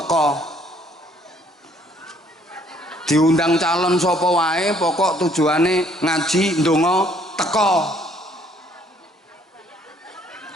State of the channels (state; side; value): normal; both; correlation 0.63